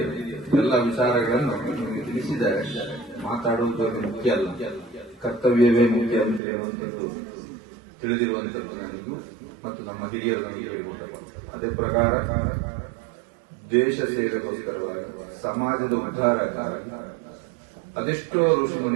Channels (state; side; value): drops out; left; at 6.4 s